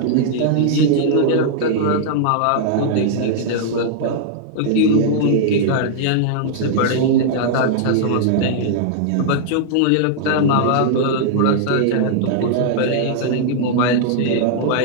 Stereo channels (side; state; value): both; different; correlation -0.01